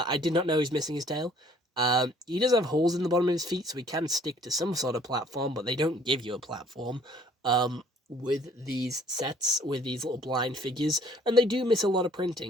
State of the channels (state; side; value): normal; both; correlation 0.57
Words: did not know he's missing his tail. He does have holes in the bottom of his feet, so he can stick to some sort of platform, but they don't give you a platform. With these sets, with these little blind figures, and they do miss a lot of